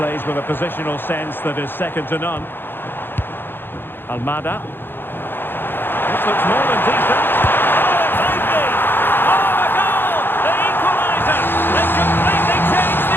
with a positional sense that is second to none. Almada. This looks more than decent. Oh, it might be! Oh, a goal! The equaliser! They completely changed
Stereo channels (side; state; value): right; late; 0.10 ms